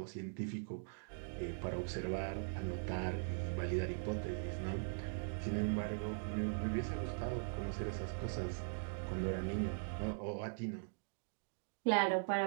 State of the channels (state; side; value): silent; left; digital silence